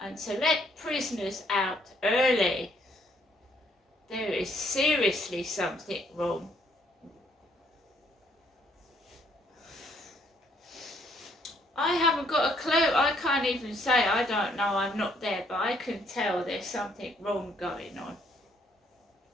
And to let prisoners out early, there is seriously something wrong. I haven't got a clue. I can't even say I don't know, I'm not there, but I can tell there's something wrong going on.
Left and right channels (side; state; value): both; normal; correlation 0.68